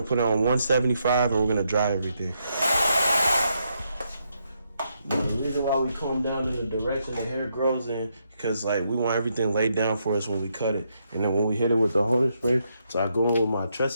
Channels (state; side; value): inverted; both; correlation -0.79